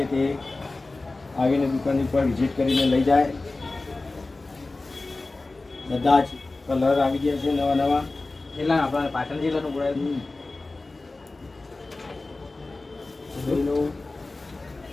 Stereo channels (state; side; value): quieter; right; 3.3 dB